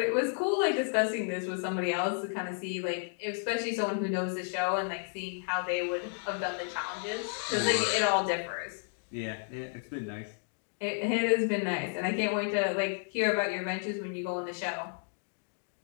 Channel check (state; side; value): silent; right; 56 dB below the other